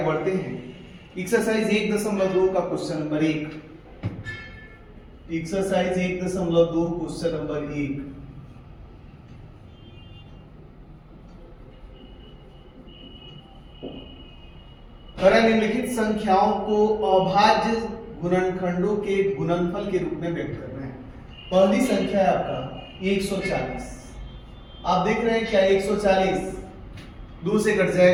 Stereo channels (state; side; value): identical; both; correlation 1.00